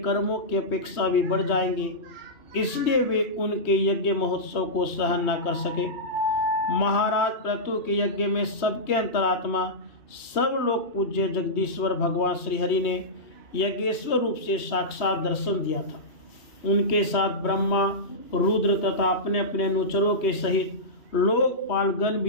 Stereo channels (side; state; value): right; late; 3.1 ms